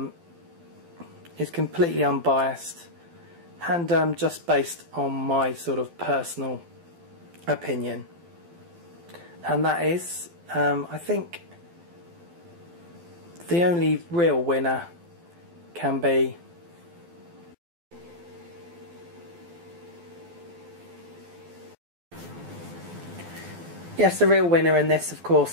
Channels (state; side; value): late; left; 12 ms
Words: is completely unbiased and just based on my sort of personal opinion, and that is I think the only real winner can be yes, the real winner in this, of